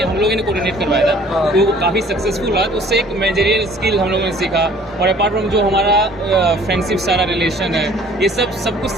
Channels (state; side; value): normal; both; correlation 0.54